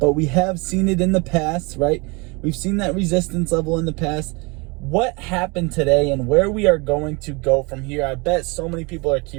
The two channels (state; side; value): quieter; left; 28.1 dB